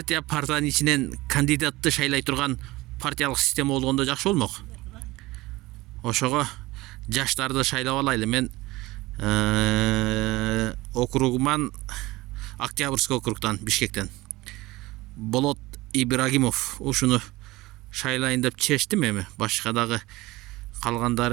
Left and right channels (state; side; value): quieter; left; 19.9 dB